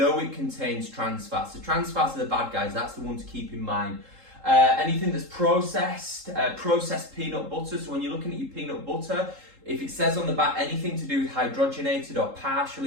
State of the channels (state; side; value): late; left; 3.7 ms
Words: it contains trans fats. So trans fats are the bad guys, that's the one to keep in mind. Anything that's processed peanut butter. So when you're looking at your peanut butter, if it says on the back anything to do with hydrogenated or